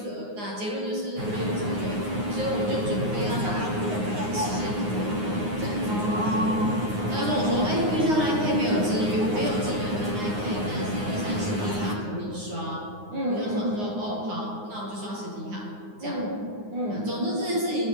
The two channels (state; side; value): late; left; 9.6 ms